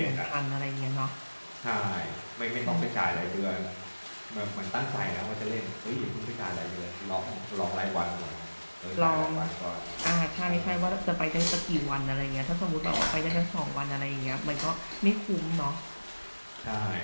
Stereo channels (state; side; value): inverted; both; correlation -1.00